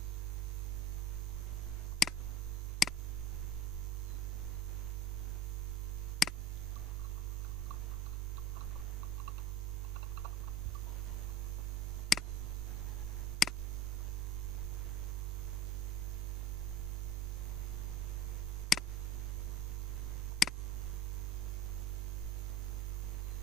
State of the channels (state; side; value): normal; both; correlation 0.40